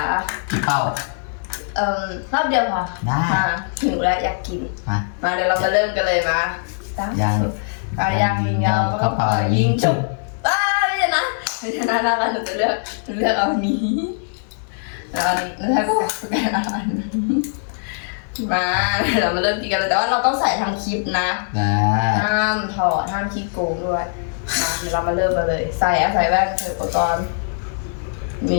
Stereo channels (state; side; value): silent; right; digital silence